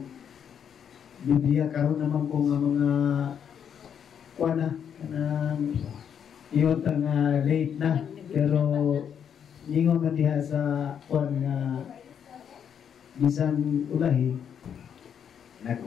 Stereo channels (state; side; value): quieter; right; 8.2 dB